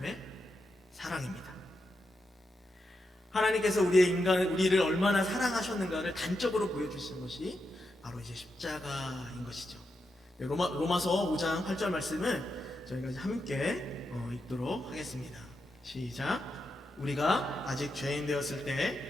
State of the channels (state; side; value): normal; both; correlation 0.86